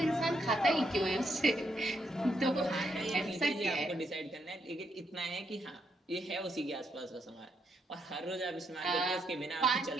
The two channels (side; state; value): both; normal; correlation 0.77